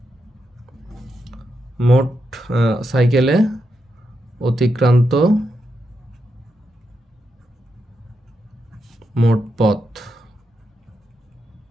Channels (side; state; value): both; normal; correlation 0.84